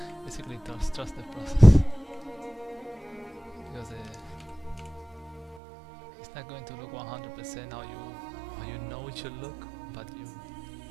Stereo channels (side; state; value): left; drops out; at 5.6 s